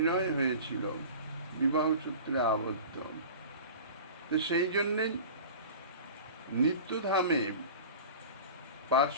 হয়েছিল, বিবাহ সূত্রে আবদ্ধ। তো সেই জন্যে নিত্যধামে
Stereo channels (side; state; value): both; inverted; correlation -0.37